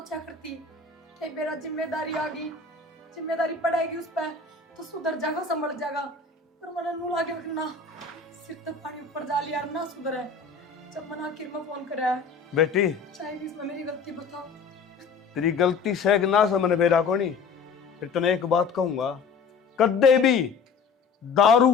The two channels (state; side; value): quieter; right; 5.0 dB